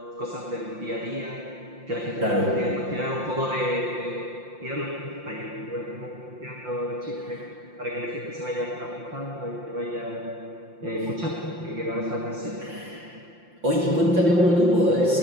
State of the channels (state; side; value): late; left; 5.8 ms